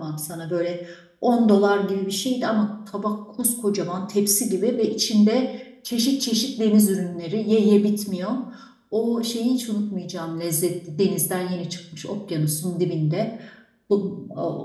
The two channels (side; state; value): both; identical; correlation 1.00